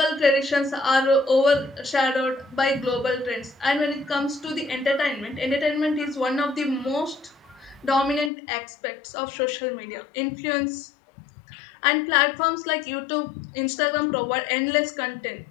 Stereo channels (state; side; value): drops out; right; at 8.3 s